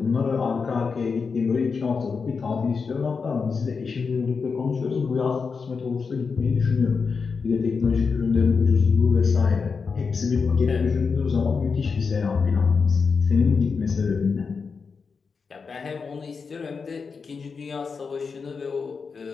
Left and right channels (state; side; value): quieter; right; 5.2 dB